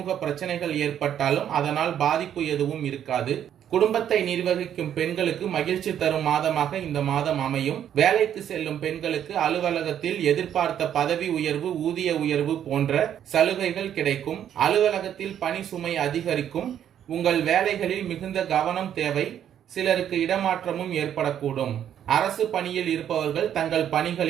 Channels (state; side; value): quieter; left; 9.9 dB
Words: பிரச்சனைகள் ஏற்பட்டாலும் அதனால் பாதிப்பு எதுவும் இருக்காது. குடும்பத்தை நிர்வகிக்கும் பெண்களுக்கு மகிழ்ச்சி தரும் மாதமாக இந்த மாதம் அமையும். வேலைக்கு செல்லும் பெண்களுக்கு அலுவலகத்தில் எதிர்பார்த்த பதவி உயர்வு, ஊதிய உயர்வு போன்ற சலுகைகள் கிடைக்கும். அலுவலகத்தில் பணி சுமை அதிகரிக்கும். உங்கள் வேலைகளில் மிகுந்த கவனம் தேவை. சிலருக்கு இடமாற்றமும் ஏற்படக்கூடும். அரசு பணியில் இருப்பவர்கள் தங்கள்